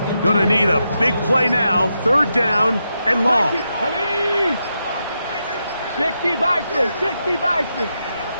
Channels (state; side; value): inverted; both; correlation -0.85